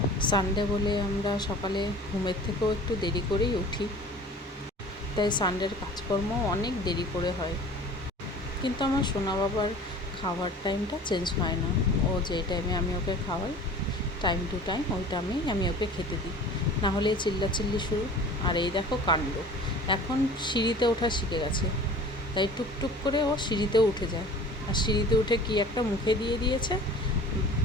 সানডে বলে আমরা সকালে ঘুমের থেকেও একটু দেরি করেই উঠি, তাই সানডের কাজকর্ম অনেক দেরি করে হয়। কিন্তু আমার সোনা বাবার খাওয়ার টাইমটা চেঞ্জ হয় না। ও যে টাইমে আমি ওকে খাওয়াই, টাইম টু টাইম ওই টাইমেই আমি ওকে খেতে দিই, না হলে চিল্লাচিল্লি শুরু। আর এই দেখো কাণ্ড, এখন সিঁড়িতে ওঠা শিখে গেছে, তাই টুকটুক করে ও সিঁড়িতেও উঠে যায়। আর সিঁড়িতে উঠে কি একটা মুখে দিয়ে দিয়েছে,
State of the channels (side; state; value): both; normal; correlation 0.44